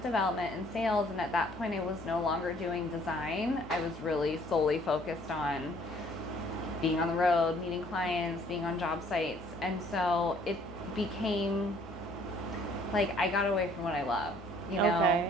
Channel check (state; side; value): normal; both; correlation 0.60